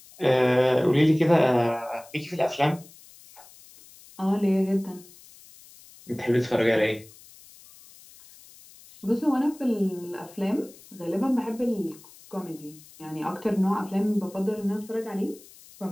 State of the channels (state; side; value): noise; left; hiss, 23 dB below the sound